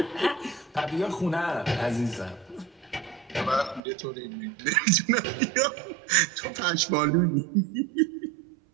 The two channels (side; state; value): left; drops out; at 3.8 s